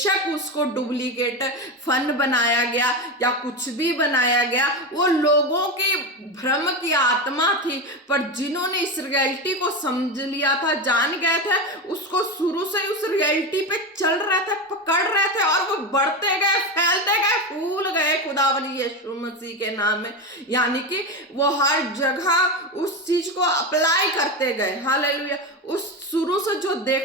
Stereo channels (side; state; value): both; normal; correlation 0.18